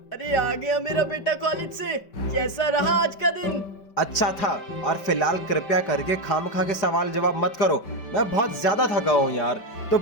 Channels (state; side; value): late; right; 5.2 ms